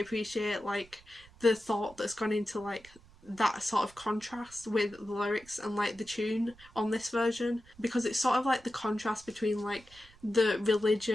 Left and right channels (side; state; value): right; noise; rumble, 25 dB below the sound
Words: like the thought that's gone into like that sort of contrast with the lyrics and like the tune on this version, because it's sort of like the contrast between like the religion